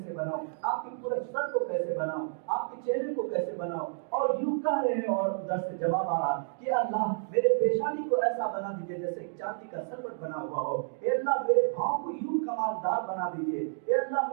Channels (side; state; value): left; silent; digital silence